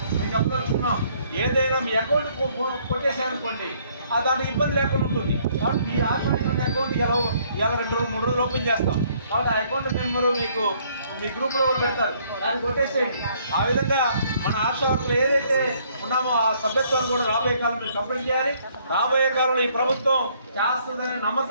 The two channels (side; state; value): both; inverted; correlation -0.65